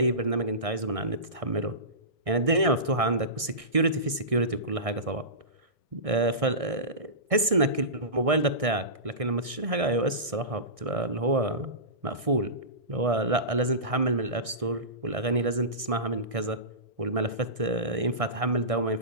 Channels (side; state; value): left; late; 1.6 ms